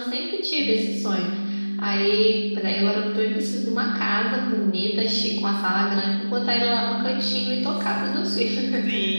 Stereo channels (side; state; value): both; inverted; correlation -1.00